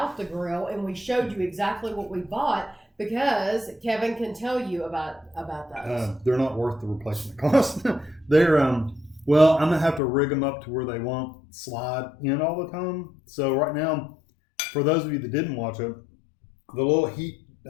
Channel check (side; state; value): right; drops out; at 10.0 s